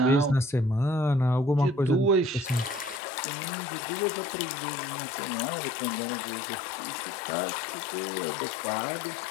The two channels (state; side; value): drops out; right; at 3.0 s